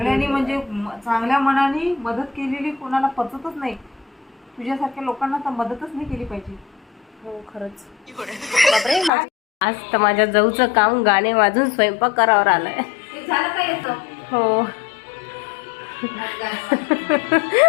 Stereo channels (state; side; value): drops out; right; at 9.1 s